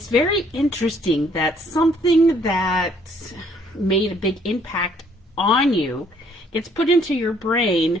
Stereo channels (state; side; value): normal; both; correlation 0.64